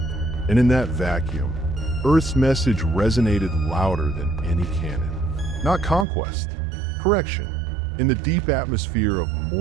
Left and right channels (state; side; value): drops out; left; at 6.1 s